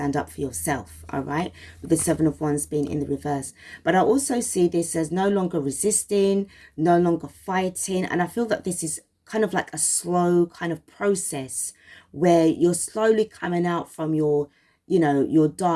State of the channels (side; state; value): both; identical; correlation 1.00